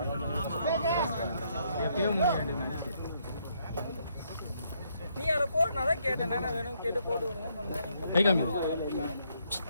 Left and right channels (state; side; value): inverted; both; correlation -0.73